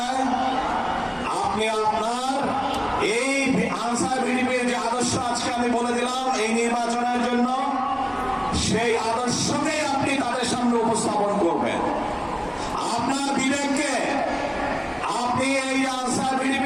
আপনি আপনার এই আনসার ভিডিপির যে আদর্শ আজকে আমি বলে দিলাম এই নির্বাচনের জন্য, সেই আদর্শকেই আপনি তাদের সামনে উপস্থাপন করবেন। আপনার বিবেককে আপনি এই আনসার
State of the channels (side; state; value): both; identical; correlation 1.00